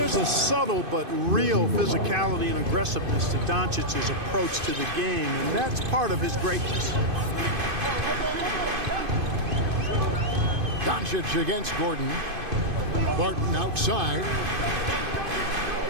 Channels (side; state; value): left; late; 2.5 ms